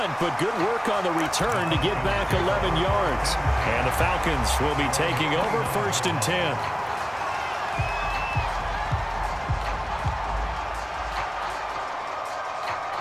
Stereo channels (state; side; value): identical; both; correlation 1.00